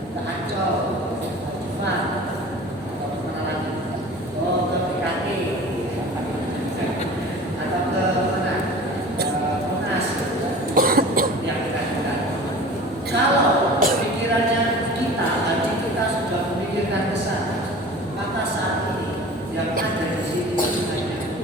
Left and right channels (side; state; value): both; normal; correlation 0.40